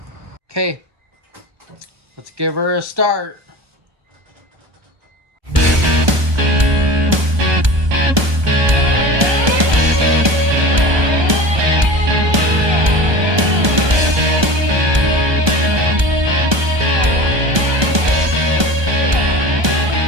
Okay. Let's give her a start.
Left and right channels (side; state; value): left; late; 1.2 ms